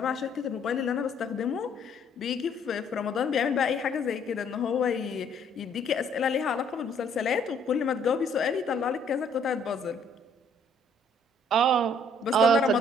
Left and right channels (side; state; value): both; normal; correlation 0.63